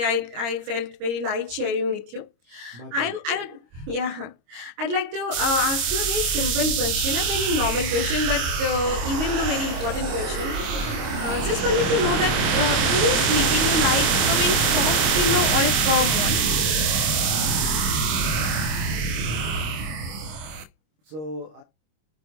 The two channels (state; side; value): late; left; 26 ms